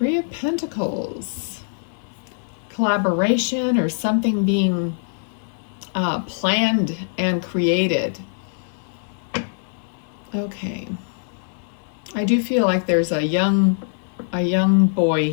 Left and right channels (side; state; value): right; silent; 57 dB below the other